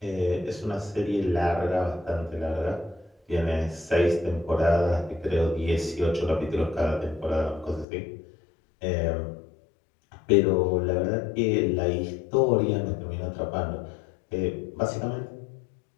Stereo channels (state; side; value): drops out; right; at 7.9 s